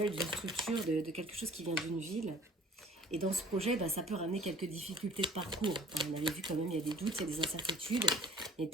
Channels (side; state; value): both; normal; correlation 0.50